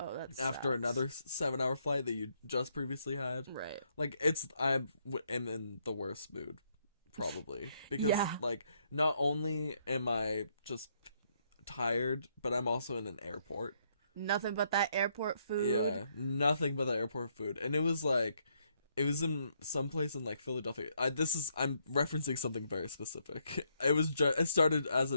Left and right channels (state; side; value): inverted; both; correlation -0.73